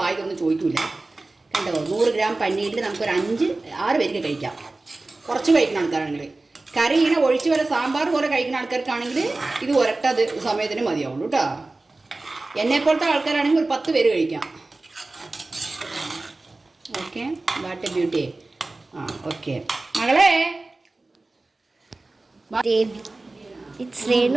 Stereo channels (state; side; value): quieter; left; 3.1 dB